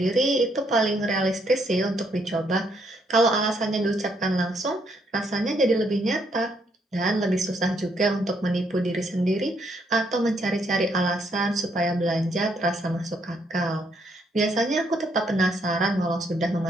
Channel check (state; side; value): normal; both; correlation 0.72